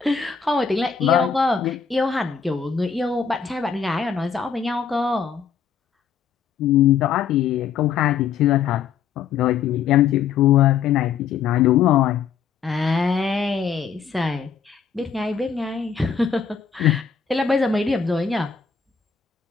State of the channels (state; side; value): quieter; right; 7.0 dB